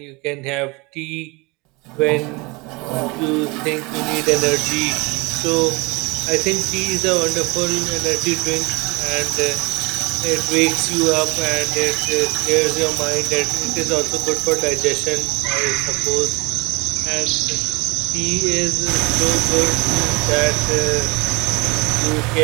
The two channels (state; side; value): quieter; left; 26.1 dB